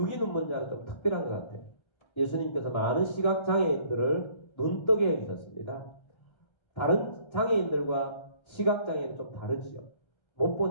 눈먼 자는 좀 특별한 것 같아요. 예수님께서 많은 시각장애인들을 눈뜨게 해주셨습니다. 다른 장애인들과 시각장애는 좀 다르지요. 못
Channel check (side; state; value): right; late; 1.3 ms